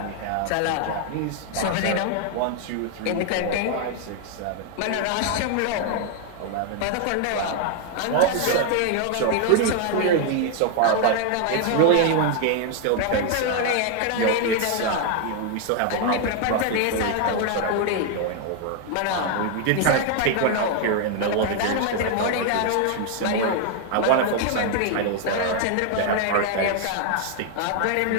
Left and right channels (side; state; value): both; different; correlation 0.00